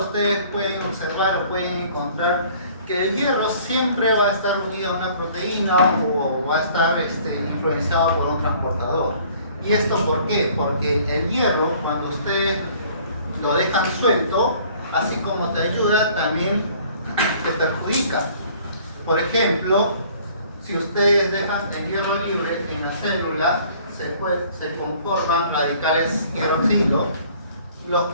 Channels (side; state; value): both; inverted; correlation -0.55